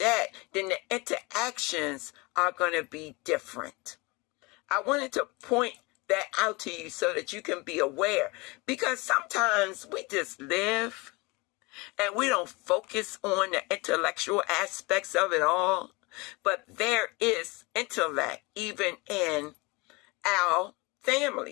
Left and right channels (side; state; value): right; quieter; 25.8 dB